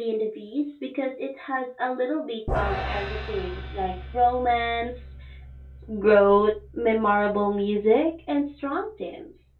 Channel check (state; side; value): identical; both; correlation 1.00